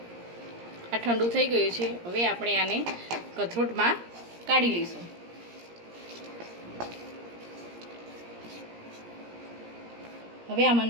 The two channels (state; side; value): late; left; 17 ms